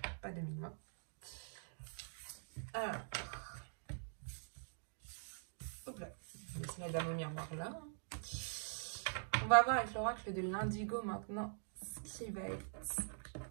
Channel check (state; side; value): silent; left; digital silence